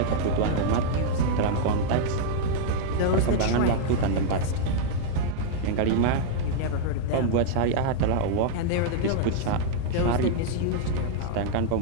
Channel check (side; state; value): both; different; correlation -0.01